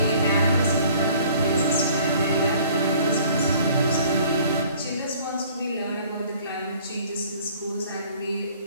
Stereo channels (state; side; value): inverted; both; correlation -0.53